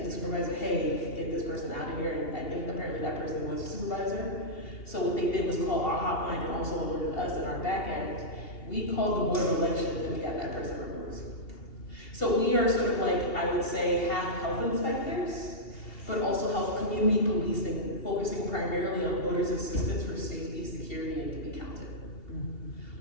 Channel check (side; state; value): right; late; 2.8 ms